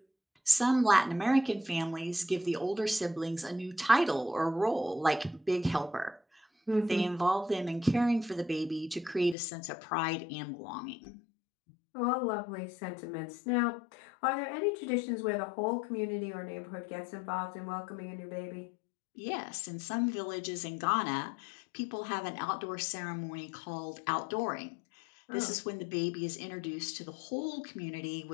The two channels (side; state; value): right; drops out; at 9.3 s